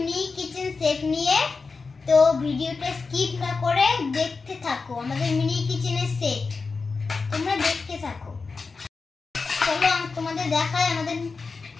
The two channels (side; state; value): right; quieter; 4.4 dB